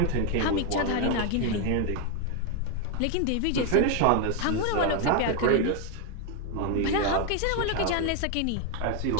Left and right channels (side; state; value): both; different; correlation 0.01